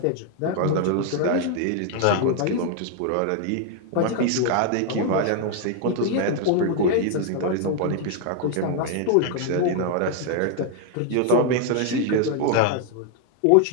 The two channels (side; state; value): both; different; correlation 0.00